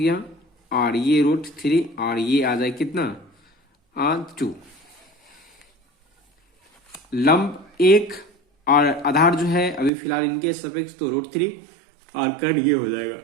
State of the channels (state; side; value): drops out; left; at 9.9 s